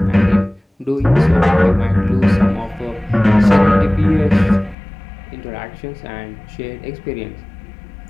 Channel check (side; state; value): right; drops out; at 4.8 s